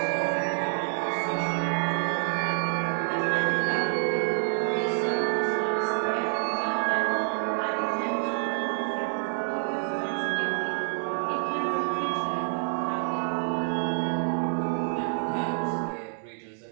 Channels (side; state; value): left; silent; 60 dB below the other